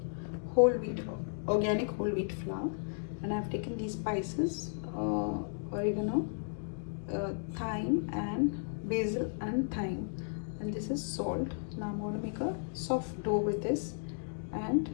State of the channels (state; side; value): silent; right; digital silence